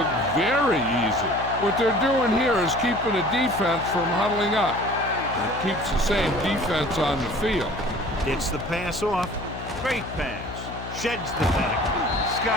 very easy. What they're doing here is keeping the defense from huddling up. And it keeps the same defense on the field. Gets the pass off. Great pass. Sheds the tackle.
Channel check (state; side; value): noise; left; hum, 11 dB below the sound